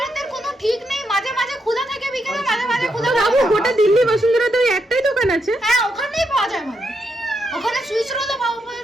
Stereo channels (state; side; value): normal; both; correlation 0.81